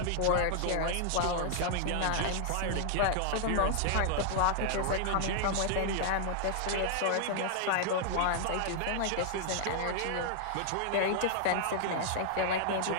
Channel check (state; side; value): different; both; correlation -0.01